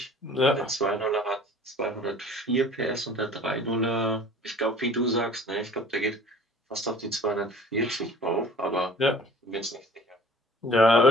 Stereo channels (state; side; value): normal; both; correlation 0.48